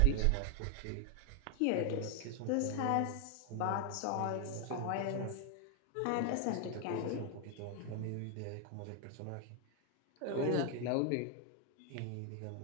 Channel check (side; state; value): both; different; correlation 0.00